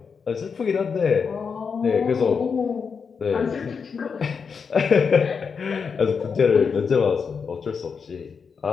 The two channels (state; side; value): quieter; right; 5.8 dB